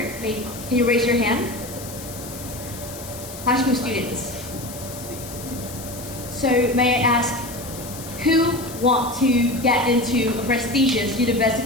Can you raise your hand? High school students. So may I ask who want to get into a prestigious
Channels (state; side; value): noise; left; hiss, 13 dB below the sound